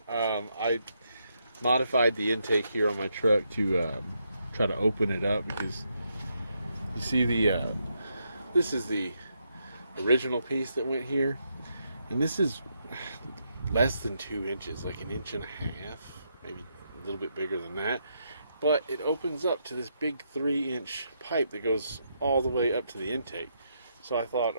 I modified the intake here on my truck to try to open it up because you see this is the original piece that went here, and this is less than 2 inches, like 1.5 inches, maybe a little bit bigger than that. But it opens up to this big 3-inch pipe that goes all the way up to the intake. So I thought,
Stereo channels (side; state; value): both; inverted; correlation -0.79